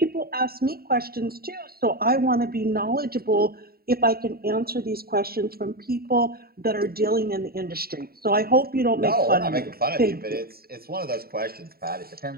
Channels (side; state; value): left; late; 0.44 ms